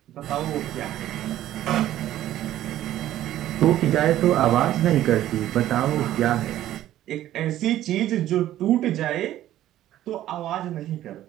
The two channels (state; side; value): quieter; left; 13.2 dB